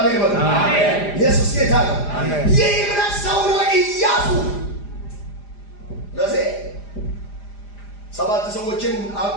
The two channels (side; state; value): right; late; 4.9 ms